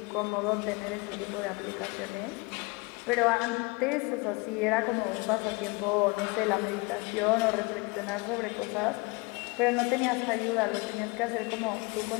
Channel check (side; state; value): right; quieter; 27.0 dB